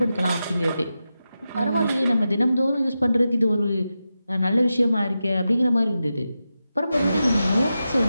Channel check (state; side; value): inverted; both; correlation -0.91